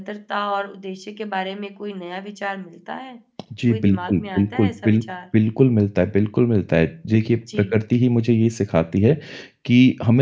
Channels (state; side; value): identical; both; correlation 1.00